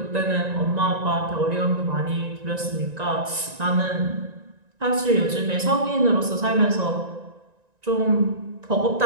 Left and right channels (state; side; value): late; left; 1.9 ms